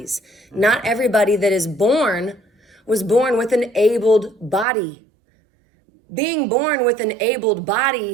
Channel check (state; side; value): drops out; left; at 4.7 s